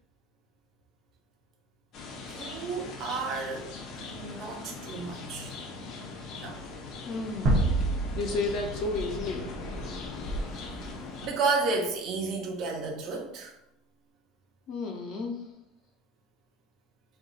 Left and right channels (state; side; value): normal; both; correlation 0.41